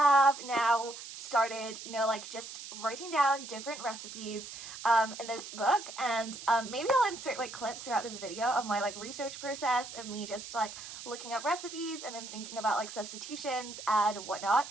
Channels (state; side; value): noise; right; hiss, 11 dB below the sound